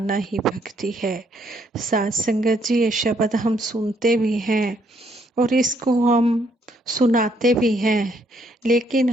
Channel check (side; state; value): both; normal; correlation 0.70